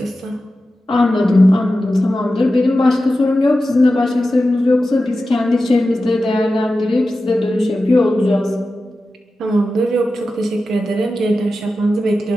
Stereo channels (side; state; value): both; normal; correlation 0.93